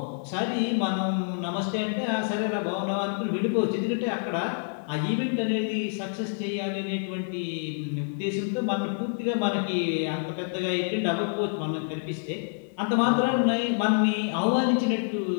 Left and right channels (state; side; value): silent; right; 60 dB below the other